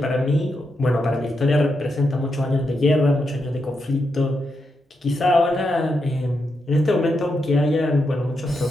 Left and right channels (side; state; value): both; normal; correlation 0.84